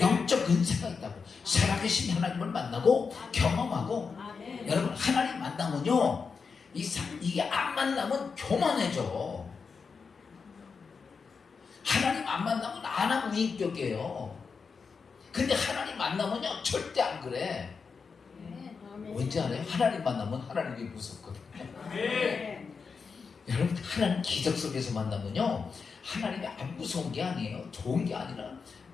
은사가 있다고. 살아계신 하나님을 만나고 경험하고. 여러분, 하나님 만나면요, 이게 안 만나면 교만해져. 하나님 안 만나면 안 하고 인격이에요. 근데 하나님 만나면요 절대 안 그래. 왠지 알아요? 하나님 만나면 하나님이 무섭거든요. 여러분, 하나님 기적 속에서 만나면요, 하나님이 안 무서운 게 아니에요. 좋은 게 아니라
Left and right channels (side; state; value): right; quieter; 5.3 dB